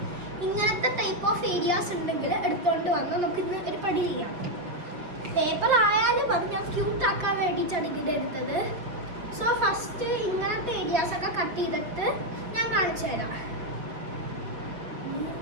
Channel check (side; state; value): left; late; 5.5 ms